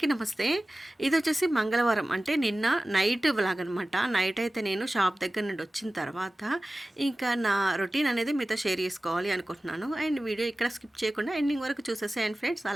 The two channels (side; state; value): both; normal; correlation 0.96